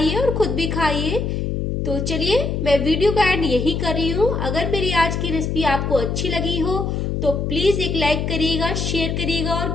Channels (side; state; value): left; noise; hum, 1 dB below the sound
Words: और खुद भी खाइए। तो चलिए मैं वीडियो का एंड यही कर रही हूँ। अगर मेरी आज की रेसिपी आपको अच्छी लगी हो तो प्लीज एक लाइक करिएगा, शेयर करिएगा और